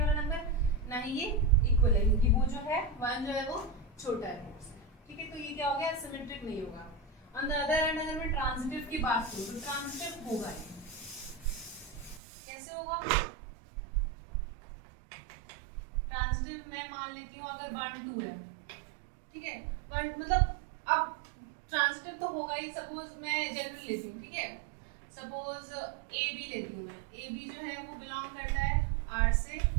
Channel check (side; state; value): left; drops out; at 12.2 s